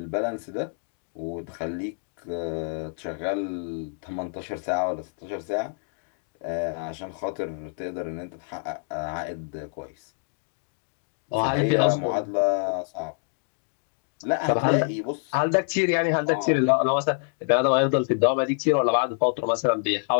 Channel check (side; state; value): right; silent; 60 dB below the other